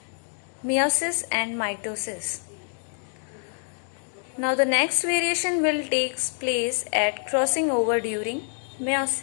meiosis and mitosis. Now the next variation will take place at crossing over during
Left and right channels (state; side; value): silent; right; 61 dB below the other